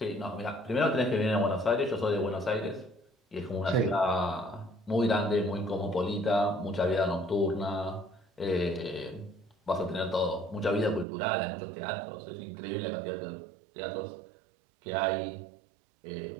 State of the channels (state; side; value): drops out; left; at 11.1 s